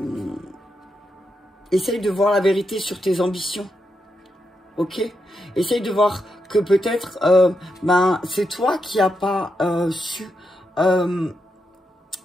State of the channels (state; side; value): normal; both; correlation 0.84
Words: Essaye de voir la vérité sur tes ambitions. Ok? Essaye de voir que peut-être c'est toi qui n'as pas su